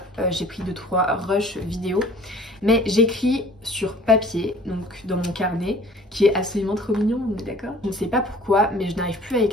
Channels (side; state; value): both; normal; correlation 0.51